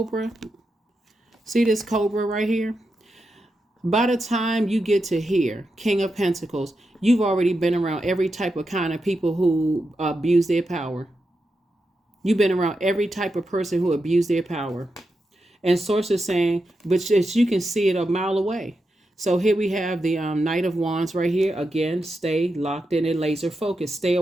See this cobra right here? By the time you get to here, King of Pentacles, you've already been around every type of kind of people who abuse their power. You've been around every type of person who abused their power. And Source is saying, but you can see it a mile away. So here we have the Knight of Wands right here. Again, stay locked in and laser focused. Stay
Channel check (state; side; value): normal; both; correlation 0.87